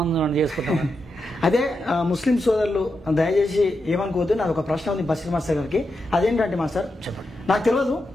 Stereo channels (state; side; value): normal; both; correlation 0.87